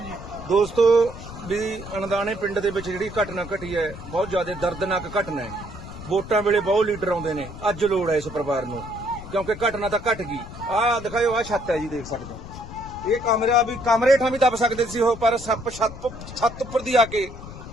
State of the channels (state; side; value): noise; left; rumble, 13 dB below the sound